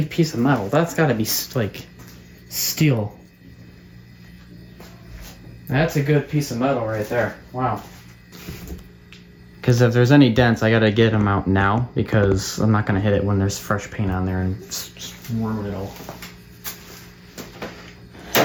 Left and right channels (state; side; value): identical; both; correlation 1.00